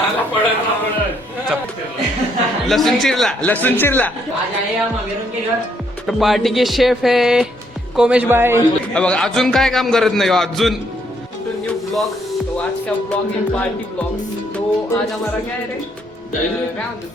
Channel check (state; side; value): normal; both; correlation 0.71